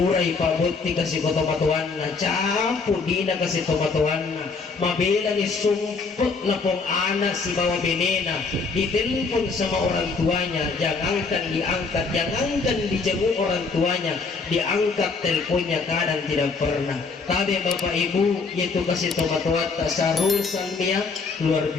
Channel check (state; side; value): quieter; right; 4.5 dB